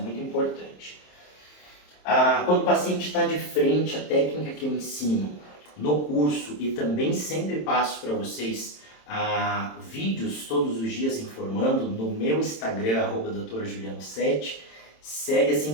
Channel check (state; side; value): late; right; 27 ms